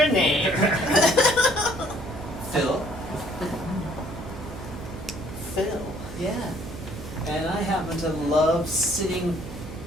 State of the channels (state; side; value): noise; right; hum, 11 dB below the sound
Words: name? Phil? Phil. Yeah. And I happen to love sitting